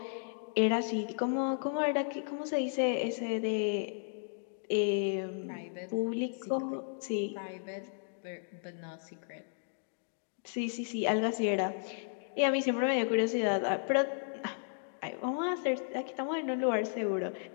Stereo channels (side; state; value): right; silent; digital silence